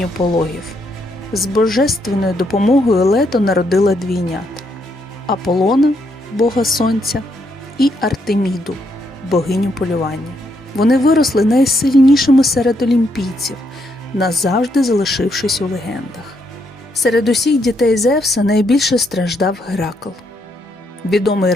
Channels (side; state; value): both; normal; correlation 0.76